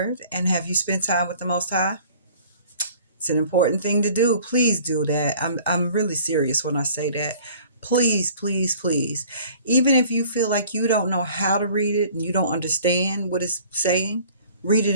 and have you spent time with the Most High? It's an important thing to do. Please do that. I'm really serious when I say that. Please, please, please. Even if you feel like you don't know how to read it and you don't understand what it's saying, read it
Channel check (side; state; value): both; inverted; correlation -0.50